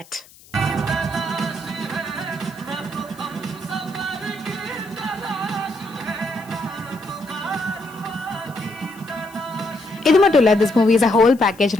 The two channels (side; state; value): left; noise; hiss, 24 dB below the sound